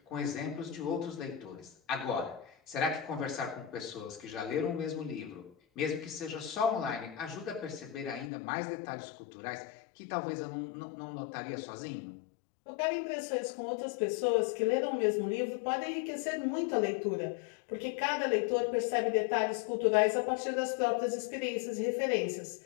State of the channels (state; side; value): drops out; right; at 8.3 s